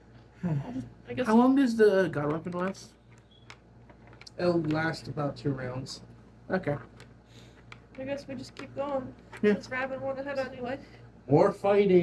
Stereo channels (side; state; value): both; identical; correlation 1.00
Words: I guess. How long does the god weapon last? It'll last about 2 rounds. Okay. I guess we just keep going. Yeah. Since Raven went ahead anyway. More